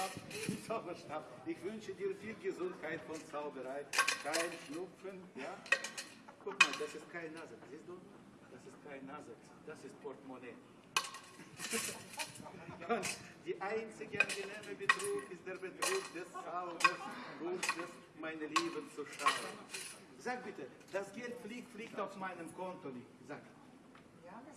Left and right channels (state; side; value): identical; both; correlation 1.00